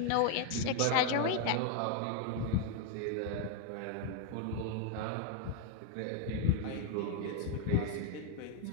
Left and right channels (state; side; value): different; both; correlation 0.00